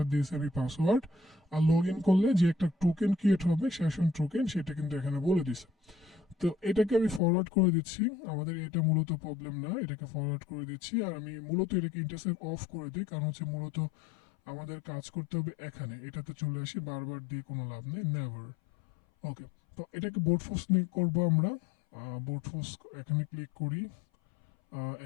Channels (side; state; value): right; drops out; at 7.2 s